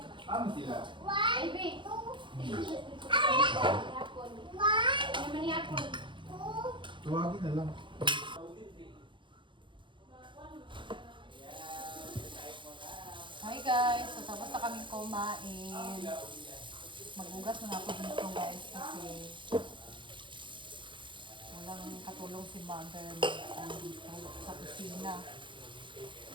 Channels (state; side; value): late; left; 0.23 ms